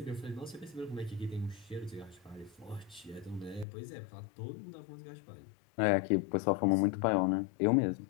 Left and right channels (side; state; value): right; drops out; at 3.7 s